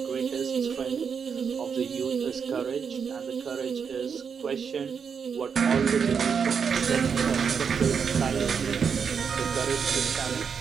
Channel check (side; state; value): left; quieter; 6.5 dB